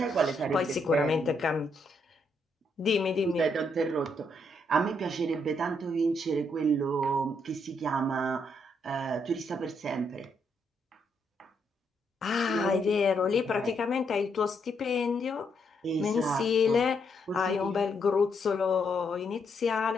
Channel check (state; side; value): normal; both; correlation 0.76